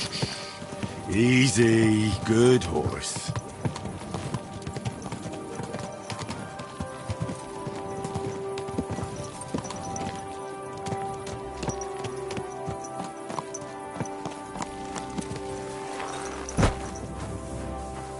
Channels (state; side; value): identical; both; correlation 1.00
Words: Easy, good horse.